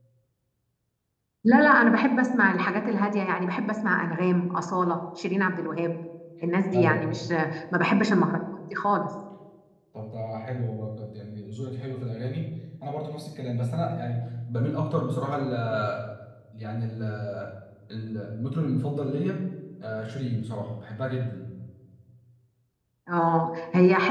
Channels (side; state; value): both; identical; correlation 1.00